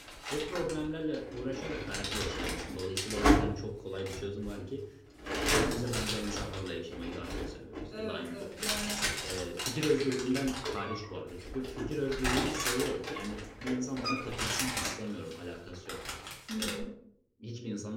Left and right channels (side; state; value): both; identical; correlation 1.00